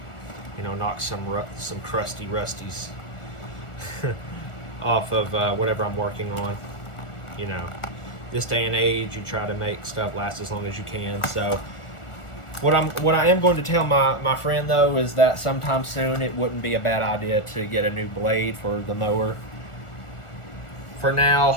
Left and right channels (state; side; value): late; right; 1.4 ms